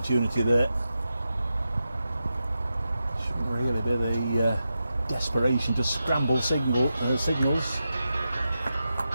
there. Shouldn't really be the desperation to scramble signals.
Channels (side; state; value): both; inverted; correlation -0.90